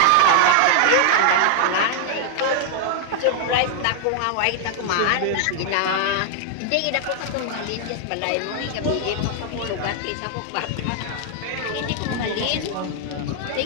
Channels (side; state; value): both; different; correlation 0.00